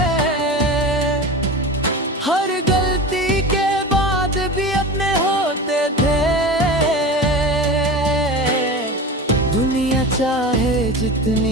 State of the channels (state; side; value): normal; both; correlation 0.30